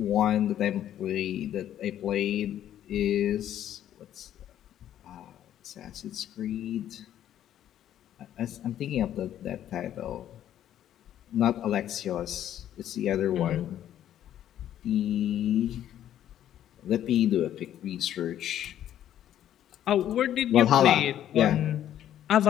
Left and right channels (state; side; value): quieter; right; 11.3 dB